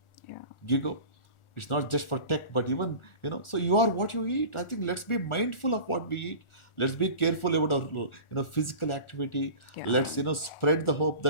Yeah. You go. It's not just for tech, but even, so you are what you eat. I think let's be mindful of what we eat. Let's be careful about our, physical activity. Yeah. Let's, spread the hope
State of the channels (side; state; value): right; late; 1.4 ms